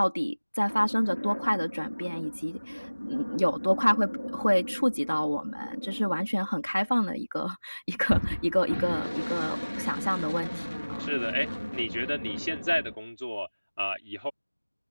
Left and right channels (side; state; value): both; inverted; correlation -1.00